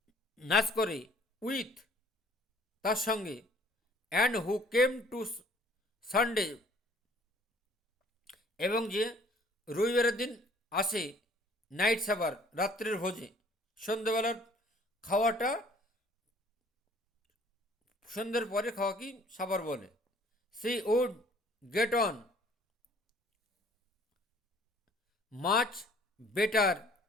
নাচ করে, উইথ, তার সঙ্গে, and who came to Sunday, এবং যে রবিবারের দিন আসে, নাইট সাবার, রাত্রের ভোজে, সন্ধ্যেবেলার খাওয়াটা, সন্ধ্যের পরে খাওয়া কি সাবার বলে। She would get on much better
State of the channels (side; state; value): both; normal; correlation 0.56